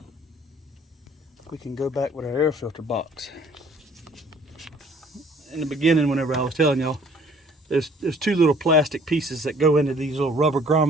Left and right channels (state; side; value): normal; both; correlation 0.56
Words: we can go back with our air filter box. In the beginning, whenever I was telling y'all, there's two little plastic pieces that go into these little rubber